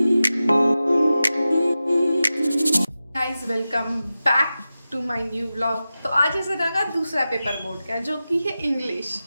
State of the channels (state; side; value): inverted; both; correlation -0.94